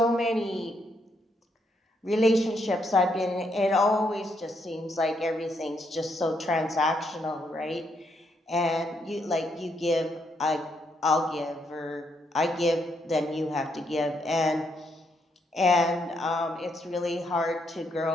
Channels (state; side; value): normal; both; correlation 0.76